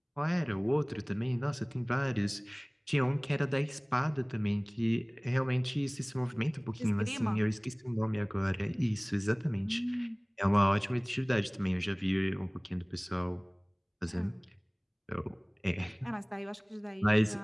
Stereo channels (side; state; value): both; identical; correlation 1.00